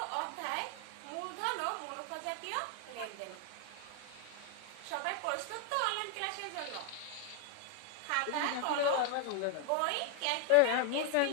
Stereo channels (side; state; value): both; different; correlation 0.00